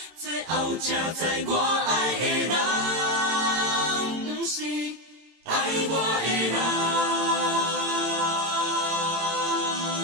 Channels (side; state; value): left; late; 18 ms